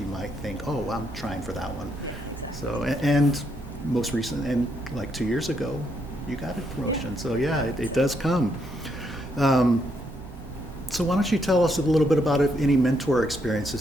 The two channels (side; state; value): both; normal; correlation 0.76